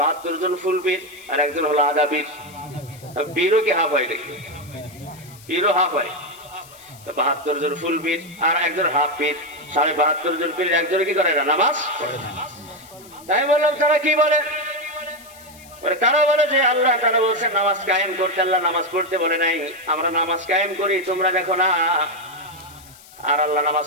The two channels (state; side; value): noise; left; hiss, 22 dB below the sound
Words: জন ফুল পীর আর একজন হলো আধা পীর। পীরও কি হাফ হয় নাকি? পীরও হাফ হয়। ৭২ জন ফুল পীর আর একজন হাফ পীর, ৭২ জন পীর একজনে কি করে না? নামাজ পড়ে না। তাই বললাম তারা কি বলে? তারা বলে যে আল্লাহ তাআলা বলছেন নামাজ কায়েম করতে, আল্লাহ নামাজ পড়তে বলে নাই। আমরা নামাজ কায়েম করি, তোমরা দেখো না। আর আল্লাহ নামাজ